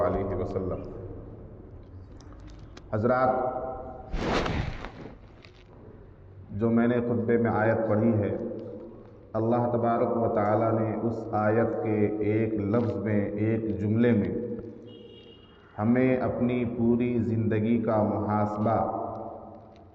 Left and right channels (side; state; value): both; identical; correlation 1.00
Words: علیہ وسلم. حضرات، جو میں نے خطبے میں آیت پڑھی ہے، اللہ تبارک و تعالیٰ نے اس آیت کے ایک لفظ میں، ایک جملے میں ہمیں اپنی پوری زندگی کا محاسبہ